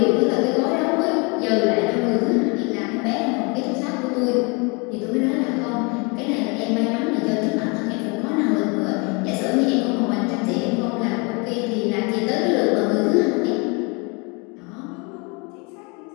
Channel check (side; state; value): right; quieter; 31.1 dB